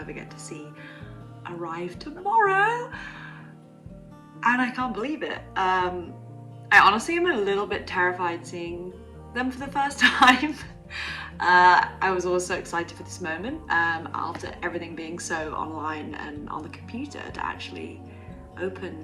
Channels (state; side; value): identical; both; correlation 1.00